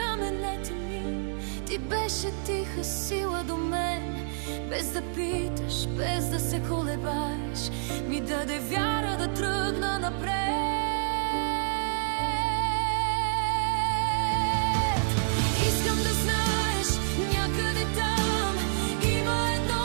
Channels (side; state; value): left; silent; digital silence